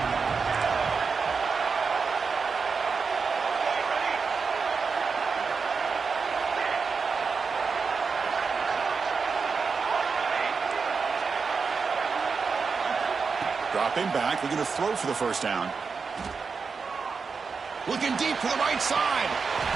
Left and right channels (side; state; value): left; quieter; 5.1 dB